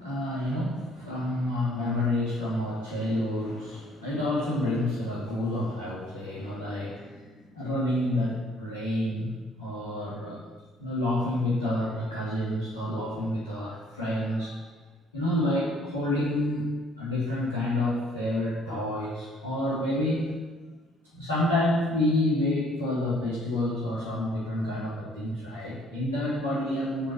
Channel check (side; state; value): both; normal; correlation 0.60